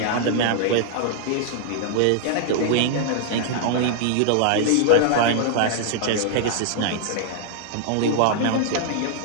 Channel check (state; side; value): different; both; correlation -0.01